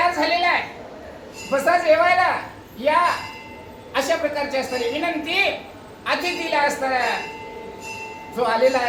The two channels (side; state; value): both; identical; correlation 1.00